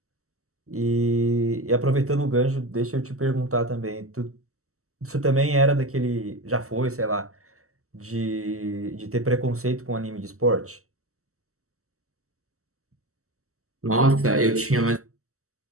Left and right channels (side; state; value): left; late; 0.64 ms